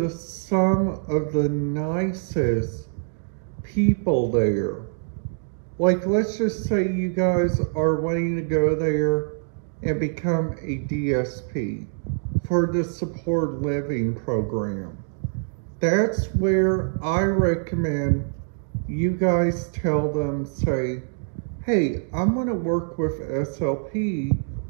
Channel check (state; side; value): silent; left; digital silence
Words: some of the nicest people there. Like, let's just say you guys are wanting to go there and become a DSP for the support living program. That's where I recommend you guys tell them, say, hey, I'm going to work with SLP,